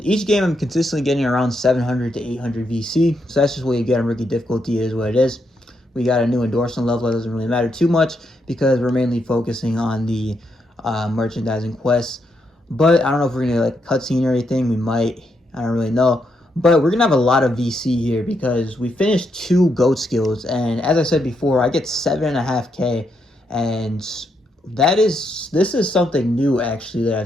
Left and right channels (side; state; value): both; normal; correlation 0.80